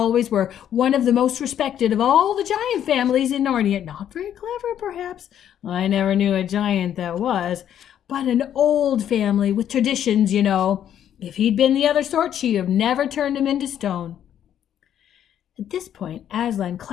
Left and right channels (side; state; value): right; quieter; 10.1 dB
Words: were. One of the most respected of all the giant families in Narnia. Not very clever, perhaps. I never knew a giant that was. But an old family with traditions, you know. If he'd been the other sort, she'd have never turned him into stone." At this point, Aslan